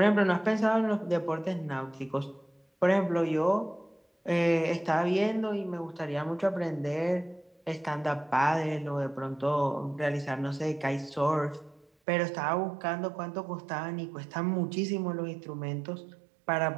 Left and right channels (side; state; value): left; drops out; at 11.9 s